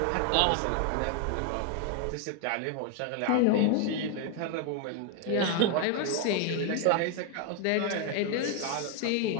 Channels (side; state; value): both; different; correlation 0.00